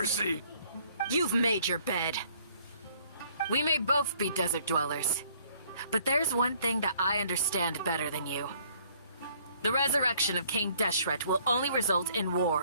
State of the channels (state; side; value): inverted; both; correlation -0.62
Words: You've made your bed. We may both be desert dwellers, but there's one thing that I understand better than you. The resurrection of King Deshret will only result in